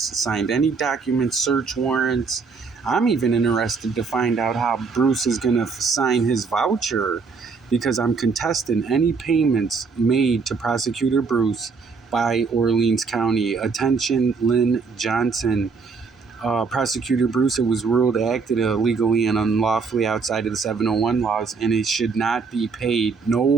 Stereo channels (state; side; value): quieter; left; 5.0 dB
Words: signed any documents, search warrants, I'm even interested to find out how Bruce is going to sign his voucher, because I'm contesting any payments made to Prosecutor Bruce by Orleans County. Attention, Lynn Johnson. Prosecutor Bruce, it was ruled acted illegally and unlawfully outside of the 701 laws, and it should not be paid.